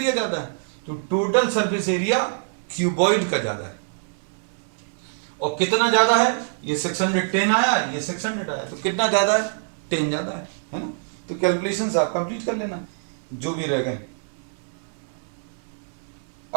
ज्यादा है, तो टोटल सरफेस एरिया क्यूबॉइड का ज्यादा है। और कितना ज्यादा है, ये 610 आया, ये 600 आया, तो कितना ज्यादा है, 10 ज्यादा है ना। तो कैलकुलेशंस आप कंप्लीट कर लेना जो भी रह गए।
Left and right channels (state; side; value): silent; left; digital silence